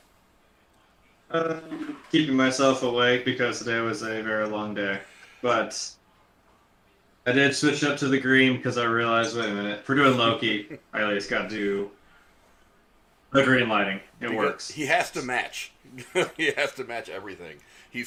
Keeping myself awake because today was a very long day. But I did switch up to the green because I realized, wait a minute, if we're doing Loki, I at least got to do the green lighting. It works. He has to match. He has to match everything.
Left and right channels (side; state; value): both; identical; correlation 1.00